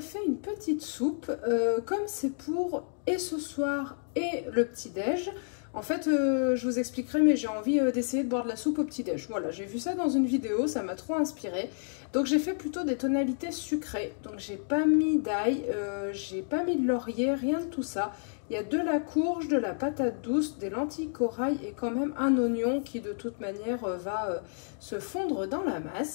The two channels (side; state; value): right; silent; digital silence